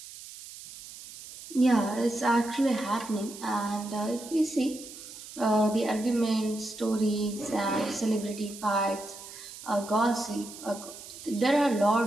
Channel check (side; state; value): right; noise; hiss, 15 dB below the sound